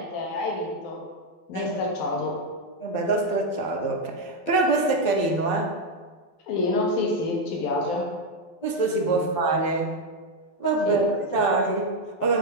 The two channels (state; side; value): late; right; 12 ms